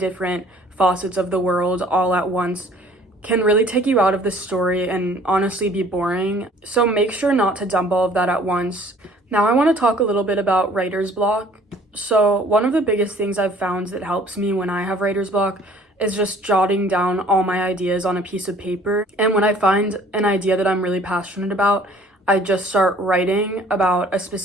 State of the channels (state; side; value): normal; both; correlation 0.54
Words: facets of the world all at once can really take you out of the story and honestly be boring. So make sure not to dump all of that at once. Now I want to talk a little bit about writer's block. So one of the biggest things I've found that helps me when I have writer's block is just jotting down all my ideas on a piece of paper. And when I find an idea that I'm really passionate about, I just start writing about a